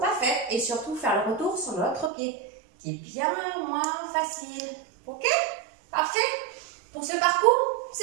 faite, et surtout faire le retour sur l'autre pied, qui est bien moins facile. Ok? Parfait? Pour ce parcours,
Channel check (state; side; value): drops out; left; at 2.1 s